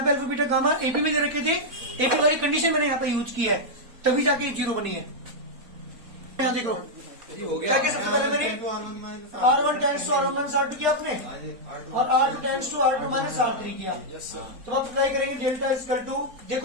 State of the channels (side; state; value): left; late; 4.1 ms